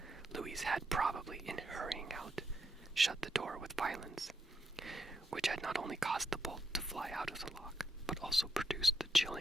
Louise had probably, in hurrying out, shut the door with violence, which had not only caused the bolt to fly out of the lock, but also produced the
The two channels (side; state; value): both; normal; correlation 0.80